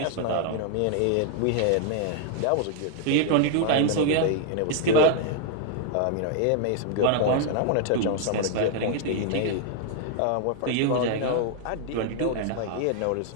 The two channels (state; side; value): different; both; correlation 0.00